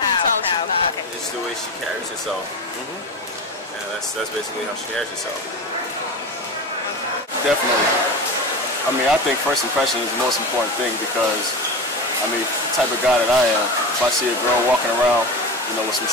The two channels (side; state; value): both; normal; correlation 0.26